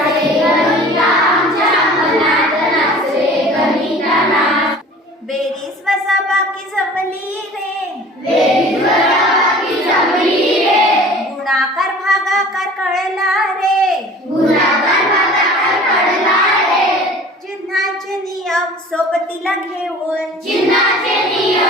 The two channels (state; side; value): normal; both; correlation 0.45